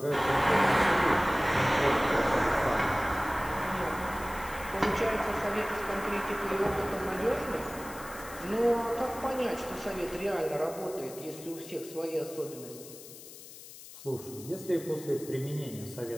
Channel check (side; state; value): left; noise; hiss, 16 dB below the sound